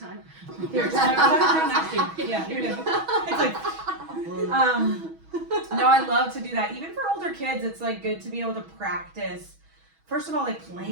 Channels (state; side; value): late; left; 6.2 ms